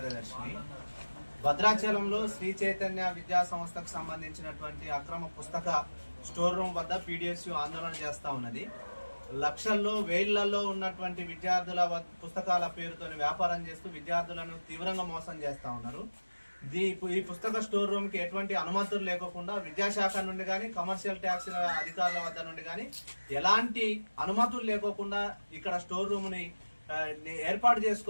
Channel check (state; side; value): inverted; both; correlation -1.00